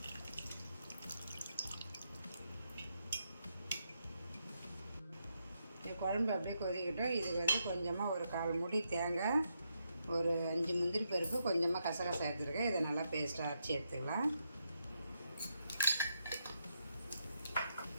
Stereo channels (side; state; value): both; inverted; correlation -0.81